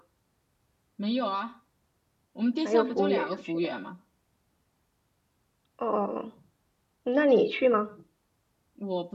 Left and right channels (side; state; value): both; identical; correlation 1.00